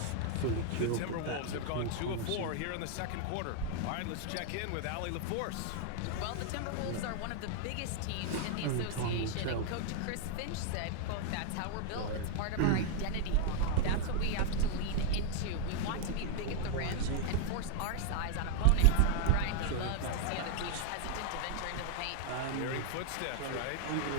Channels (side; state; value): both; different; correlation -0.01